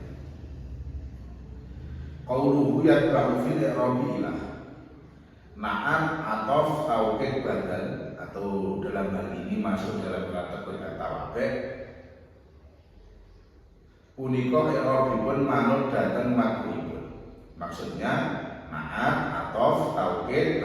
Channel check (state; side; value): identical; both; correlation 1.00